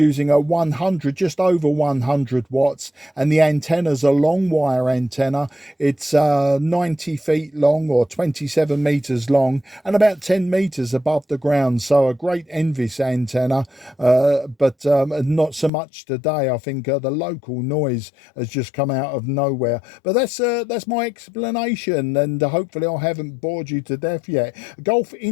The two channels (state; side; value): drops out; right; at 15.7 s